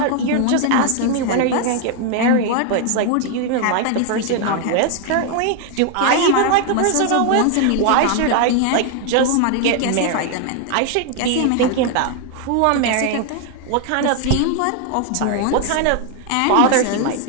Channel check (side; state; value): both; different; correlation 0.00